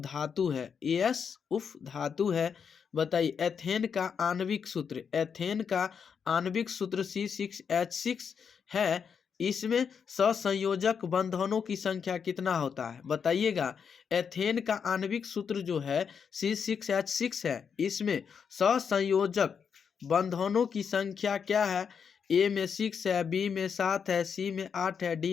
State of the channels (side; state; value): right; quieter; 6.7 dB